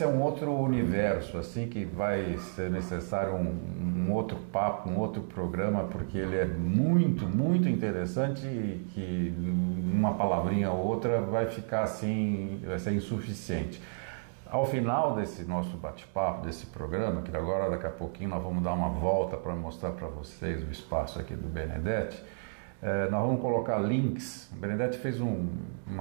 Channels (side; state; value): left; silent; digital silence